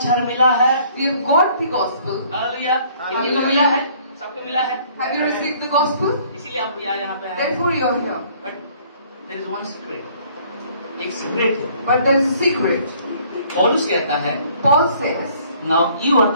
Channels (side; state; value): both; inverted; correlation -0.59